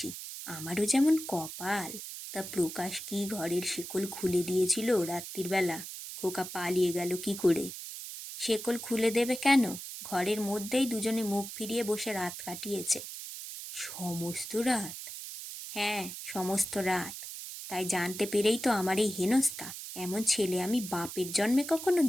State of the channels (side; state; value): right; noise; hiss, 9 dB below the sound